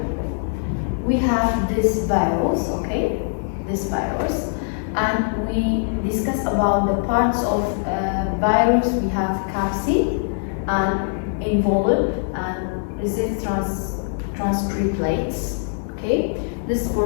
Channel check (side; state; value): right; silent; 64 dB below the other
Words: We have this virus, okay, and we discuss about the parts of virus. We have capsid and envelope and resist transcriptates. Okay, this is